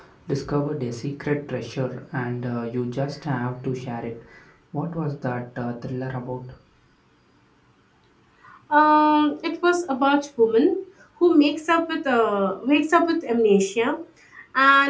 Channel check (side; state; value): both; identical; correlation 1.00